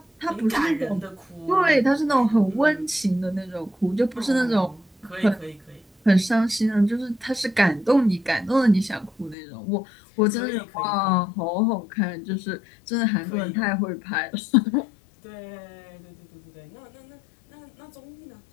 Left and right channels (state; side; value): drops out; right; at 9.3 s